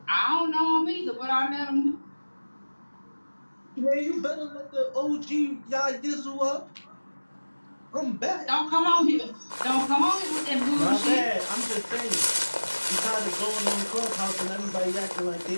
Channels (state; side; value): inverted; both; correlation -1.00